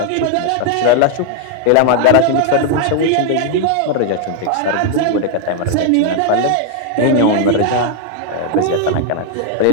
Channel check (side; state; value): both; different; correlation 0.00